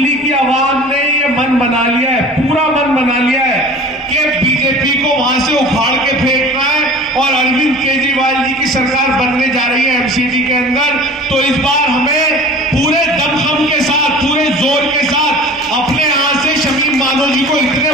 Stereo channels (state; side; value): normal; both; correlation 0.42